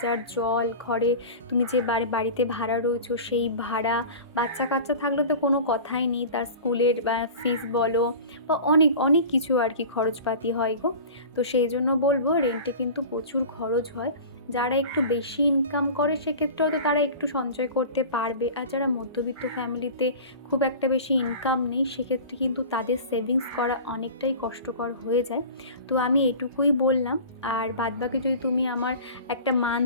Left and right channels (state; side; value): inverted; both; correlation -0.37